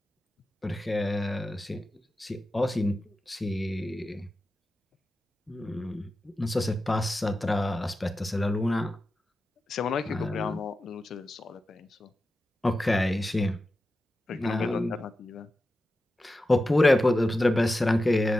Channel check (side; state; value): both; normal; correlation 0.92